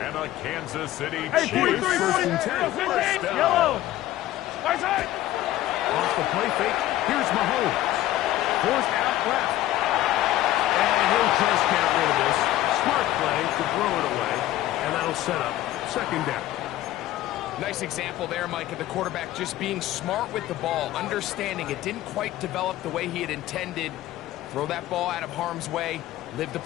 And a Kansas City Chiefs first and 10. First down. Yellow. Off the play fake, here's Mahomes. Forced out left. And he'll just get rid of this. Smart play to throw it away. And that'll set up second down. Nice example there, Mike, of the quarterback just being smart with the ball, understanding it didn't quite develop the way he had intended. Throw that ball out of harm's way, live to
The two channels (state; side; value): quieter; right; 14.6 dB